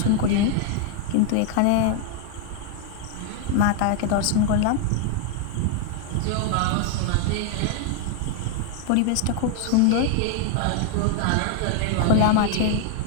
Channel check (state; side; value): different; both; correlation 0.00